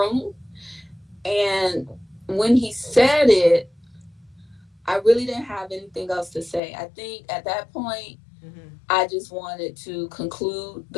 And when he said it, I really didn't have anything else to say. I think at that point, Mm-hmm. I just wanted to conclude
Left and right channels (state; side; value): drops out; right; at 6.6 s